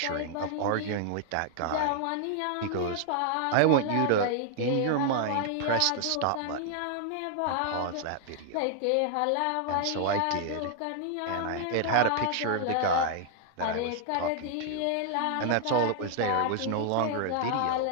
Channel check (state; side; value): different; both; correlation 0.00